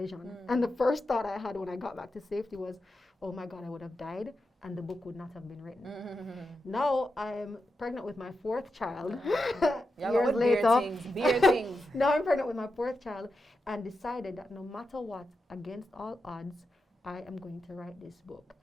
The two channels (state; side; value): normal; both; correlation 0.88